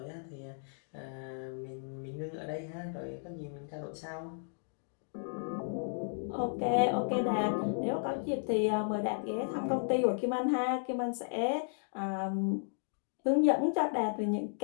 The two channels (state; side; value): silent; right; digital silence